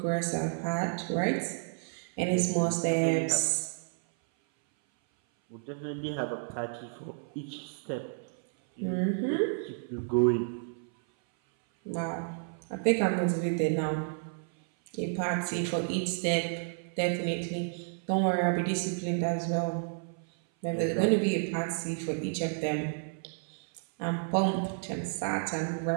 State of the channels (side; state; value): left; silent; 57 dB below the other